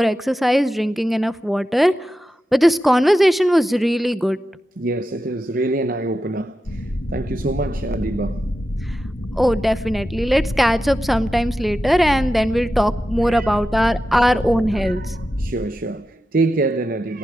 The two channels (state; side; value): normal; both; correlation 0.91